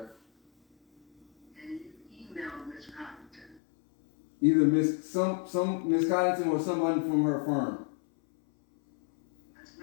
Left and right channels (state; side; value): drops out; right; at 3.6 s